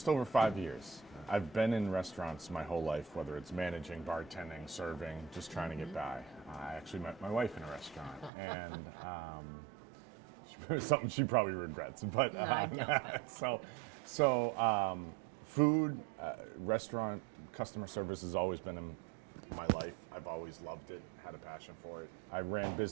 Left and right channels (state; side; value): drops out; left; at 8.3 s